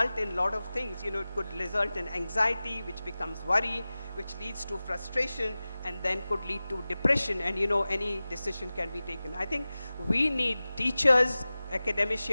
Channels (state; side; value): inverted; both; correlation -0.97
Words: in a lot of things. It could result in anxiety, which becomes worry, which leads to frustration, and then could lead to depression, and any decision can be taken. I think we need teachers,